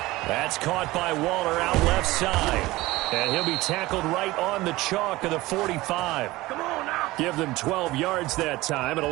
That's caught by Waller out left side. And he'll be tackled right on the chalk of the 45. Give them 12 yards that time, and a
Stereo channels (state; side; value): quieter; left; 19.2 dB